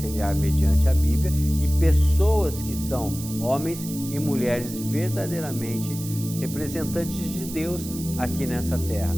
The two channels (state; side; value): noise; right; hiss, 12 dB below the sound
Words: mediante a Bíblia e pessoas que são homens e mulheres verdadeiramente representantes de Deus aqui nessa terra,